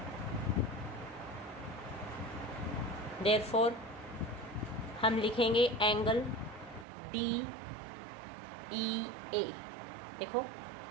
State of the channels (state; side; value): drops out; left; at 6.9 s